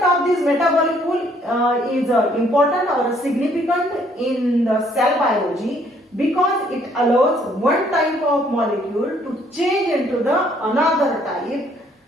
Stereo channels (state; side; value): normal; both; correlation 0.65